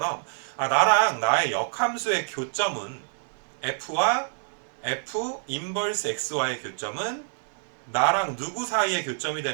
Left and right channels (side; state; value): left; silent; digital silence